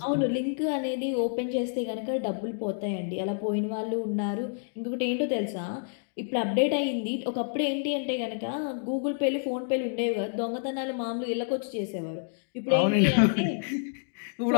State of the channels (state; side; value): silent; right; digital silence